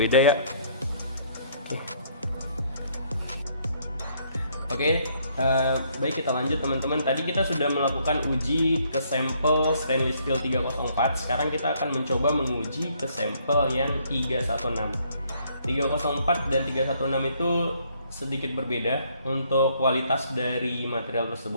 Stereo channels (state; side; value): inverted; both; correlation -0.66